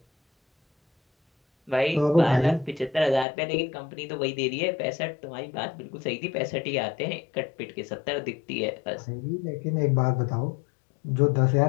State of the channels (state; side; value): drops out; right; at 3.2 s